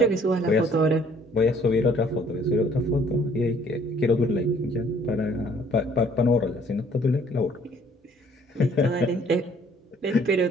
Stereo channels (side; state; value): both; normal; correlation 0.59